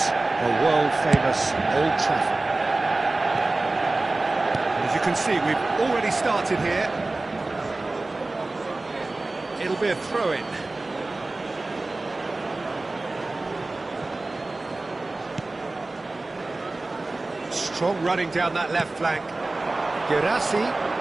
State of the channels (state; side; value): quieter; left; 3.1 dB